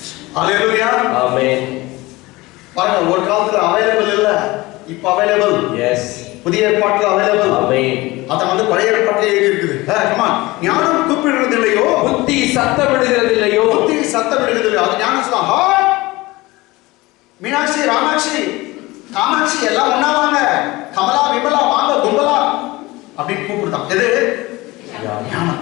அல்லேலூயா. ஆமென். பாருங்க, ஒரு காலத்துல அவைலபிள் இல்ல, இப்ப அவைலபிள். எஸ். புதிய ஏற்பாட்டுல அவைலபிள். ஆமென். அத பழைய ஏற்பாட்டிலே எழுதி இருக்குது. ஞானம் கூப்பிடுறது இல்லையோ, புத்தி சத்தமிடுகிறது இல்லையோ. புத்தி சத்தமிடுகிறது இல்லையோ. அது ஞானம் சொல்லுவாங்க. மீனாட்சி, ராமாட்சி, காமாட்சி எல்லாம் ஒண்ணா வாங்க, கமலா, விமலா வாங்க, கும்பலா அப்படின்னு கூப்பிடுதான். எது? ஞானம்.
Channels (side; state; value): right; quieter; 21.0 dB